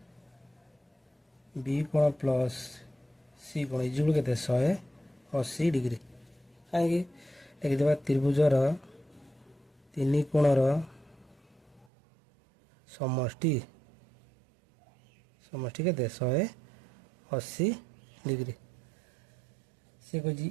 बी कोण प्लस सी कोण इक्वल केते 180 डिग्री। कहीं लिखिदेबा त्रिभुजर 3 कोणर समष्टि केते 180 डिग्री। से कही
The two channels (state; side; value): drops out; left; at 11.9 s